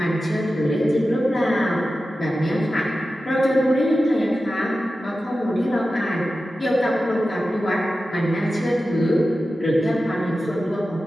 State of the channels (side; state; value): both; normal; correlation 0.93